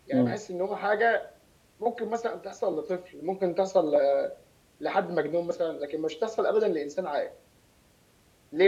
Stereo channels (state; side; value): identical; both; correlation 1.00